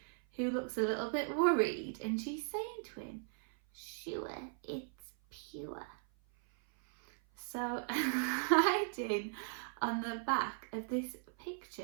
who looks a little bit worried, and she's saying to him, "Sure, it's pure." So hiding on the back of this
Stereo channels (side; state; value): left; silent; 52 dB below the other